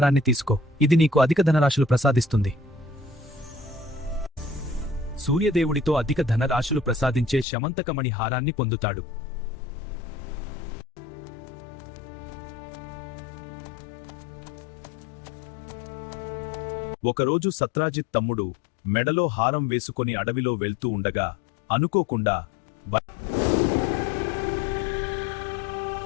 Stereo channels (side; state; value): right; drops out; at 7.5 s